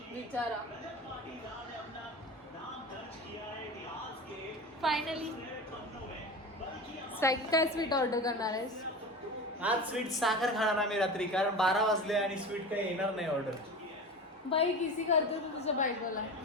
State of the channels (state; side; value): normal; both; correlation 0.30